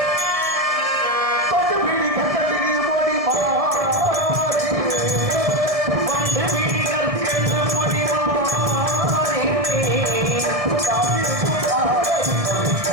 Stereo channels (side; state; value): left; late; 1.6 ms